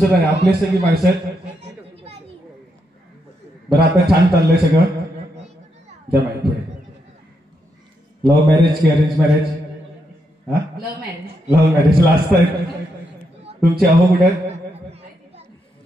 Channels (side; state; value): both; normal; correlation 0.81